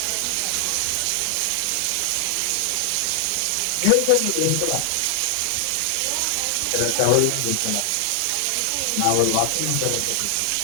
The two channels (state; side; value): different; both; correlation 0.00